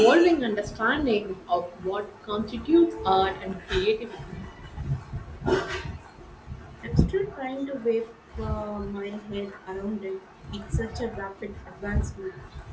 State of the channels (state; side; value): identical; both; correlation 1.00